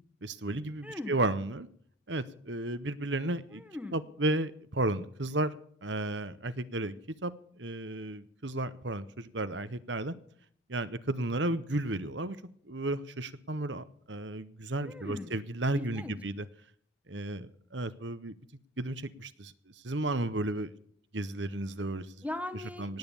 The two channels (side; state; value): both; normal; correlation 0.37